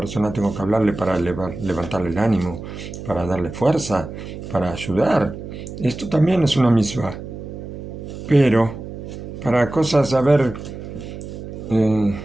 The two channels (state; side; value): noise; right; hum, 10 dB below the sound